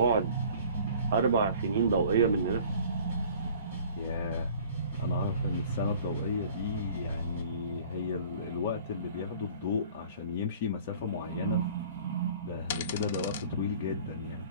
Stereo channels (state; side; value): inverted; both; correlation -0.49